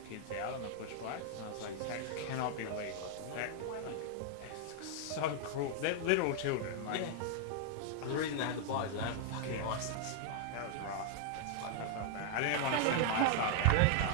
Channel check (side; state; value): both; different; correlation 0.00